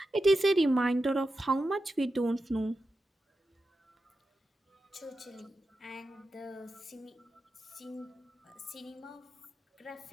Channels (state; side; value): normal; both; correlation 0.90